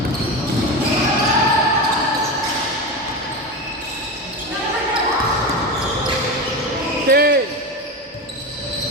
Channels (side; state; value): both; normal; correlation 0.21